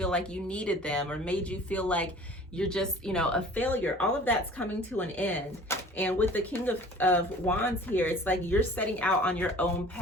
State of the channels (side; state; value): both; normal; correlation 0.47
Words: like you needed them, or made you feel like you're just, you know, a failure. All of that's coming to an end. And with the King of Wands here, it's like you're setting out on your own